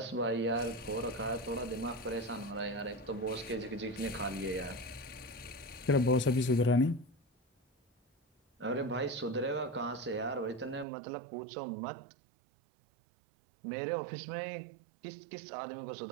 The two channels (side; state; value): left; drops out; at 10.9 s